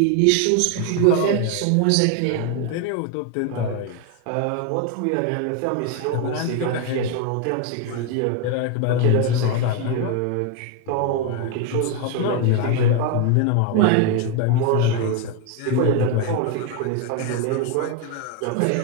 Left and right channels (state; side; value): different; both; correlation 0.01